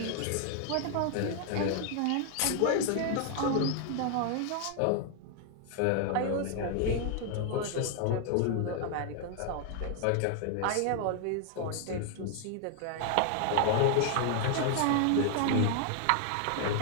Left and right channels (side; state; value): both; different; correlation 0.00